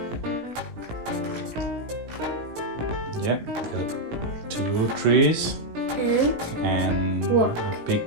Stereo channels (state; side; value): late; left; 18 ms